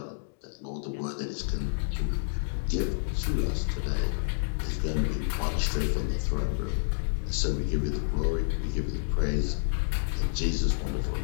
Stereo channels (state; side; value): silent; right; digital silence